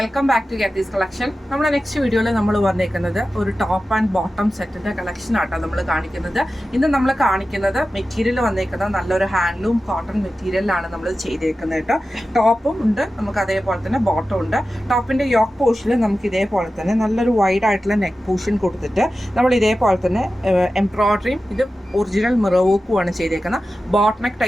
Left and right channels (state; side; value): normal; both; correlation 0.94